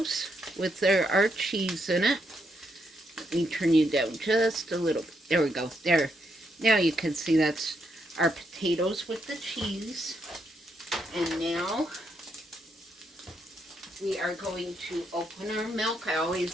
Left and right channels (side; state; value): both; normal; correlation 0.78